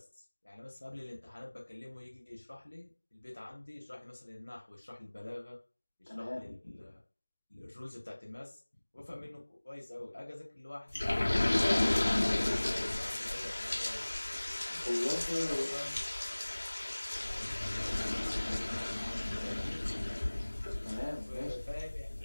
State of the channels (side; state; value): both; inverted; correlation -1.00